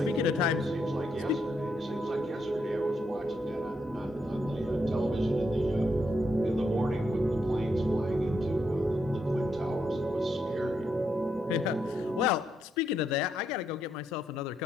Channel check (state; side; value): normal; both; correlation 0.80